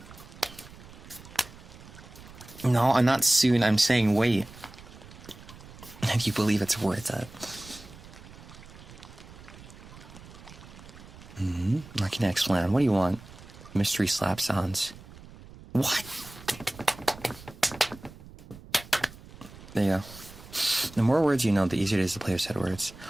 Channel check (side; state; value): right; noise; rumble, 18 dB below the sound